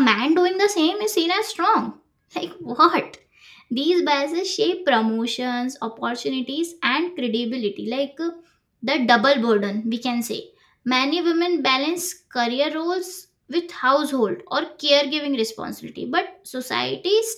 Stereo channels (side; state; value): both; identical; correlation 1.00